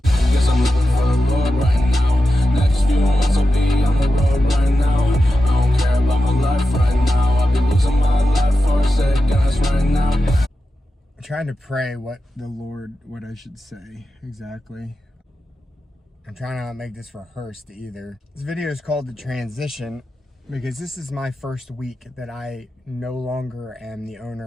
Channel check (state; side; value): normal; both; correlation 0.91